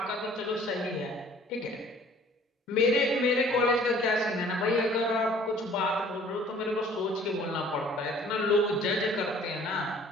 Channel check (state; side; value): normal; both; correlation 0.53